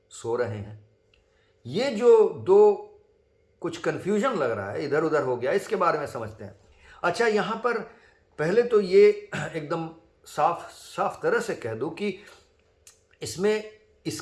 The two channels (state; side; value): identical; both; correlation 1.00